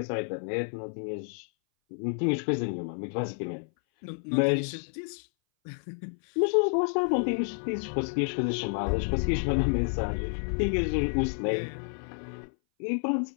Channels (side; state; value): right; silent; 58 dB below the other